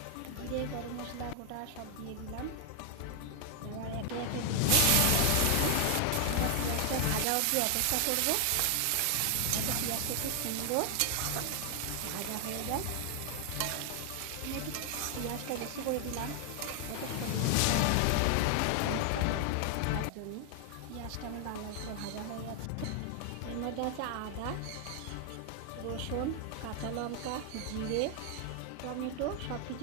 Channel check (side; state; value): both; different; correlation 0.00